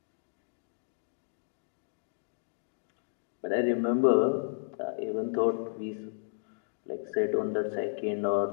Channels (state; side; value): silent; right; digital silence